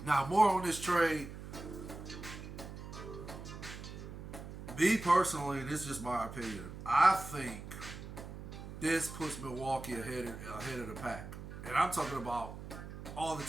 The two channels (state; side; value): noise; right; hum, 11 dB below the sound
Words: Now, more on this trade. Me personally, this is just my opinion, I think this puts Milwaukee ahead of the pack. And I'm talking about all the